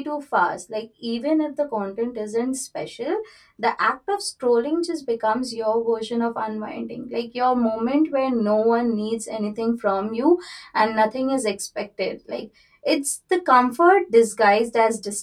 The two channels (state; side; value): identical; both; correlation 1.00